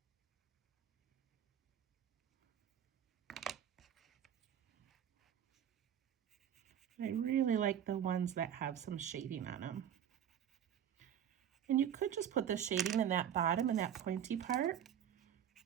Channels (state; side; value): quieter; left; 9.5 dB